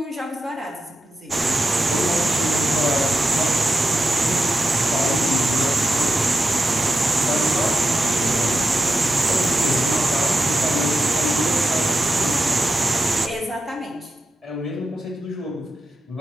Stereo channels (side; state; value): both; normal; correlation 0.89